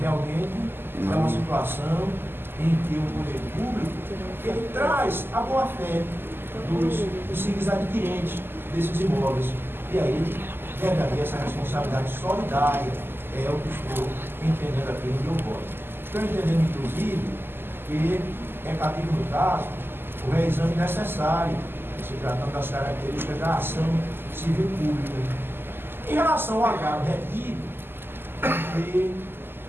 é uma situação em que o poder público ele traz a boa-fé dos possíveis adquirentes desses imóveis. E aí deve haver essa responsabilidade solidária, é o que estou entendendo aqui no meu voto. Estou entendendo, inclusive, que é cabível no caso o reexame necessário, se tratando das características da ação civil pública. Em relação ao agravo retido, e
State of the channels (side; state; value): left; late; 0.10 ms